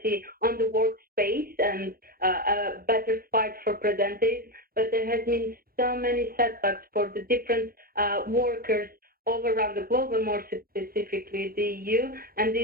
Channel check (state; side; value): late; left; 0.43 ms